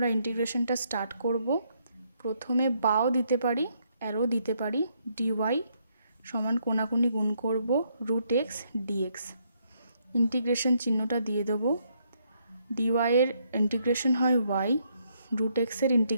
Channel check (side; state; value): both; inverted; correlation -0.74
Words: ইন্টিগ্রেশনটা স্টার্ট করব। প্রথমে বাও দিতে পারি, অ্যারো দিতে পারি। dy সমান কোনাকুনি গুণ করব রুট এক্স ডিএক্স। ইন্টিগ্রেশন চিহ্নটা দিয়ে দেবো। ডিওয়াই এর ইন্টিগ্রেশন হয় ওয়াই, রুট এক্সের